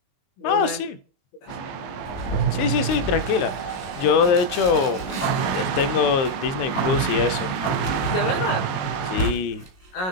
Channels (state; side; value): late; right; 22 ms